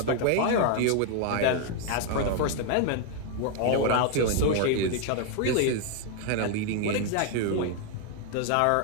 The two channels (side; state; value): both; different; correlation 0.01